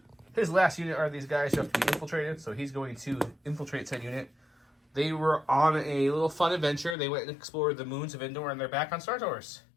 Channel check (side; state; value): right; drops out; at 7.0 s